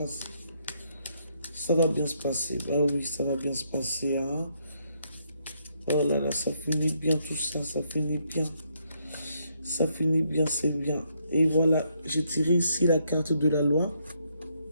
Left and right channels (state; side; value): inverted; both; correlation -0.74